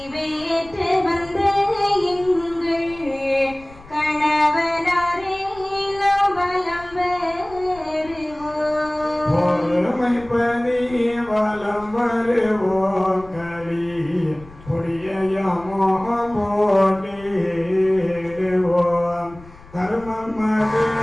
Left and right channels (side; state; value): left; noise; rumble, 21 dB below the sound